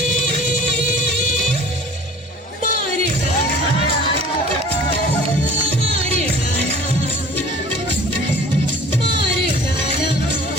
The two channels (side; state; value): both; normal; correlation 0.47